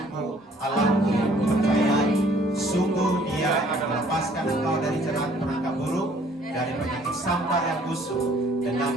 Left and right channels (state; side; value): normal; both; correlation 0.58